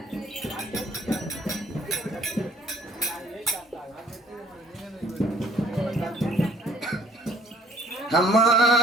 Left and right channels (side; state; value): both; normal; correlation 0.59